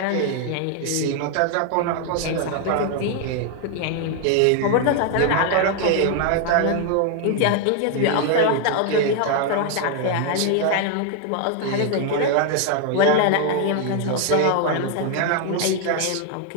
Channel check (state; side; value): different; both; correlation 0.00